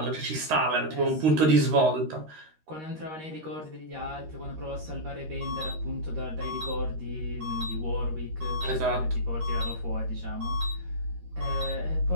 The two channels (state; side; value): late; left; 13 ms